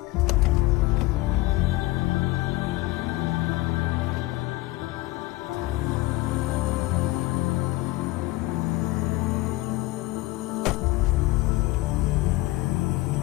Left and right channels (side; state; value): right; quieter; 19.1 dB